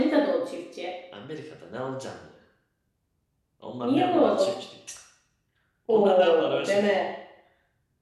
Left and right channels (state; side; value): identical; both; correlation 1.00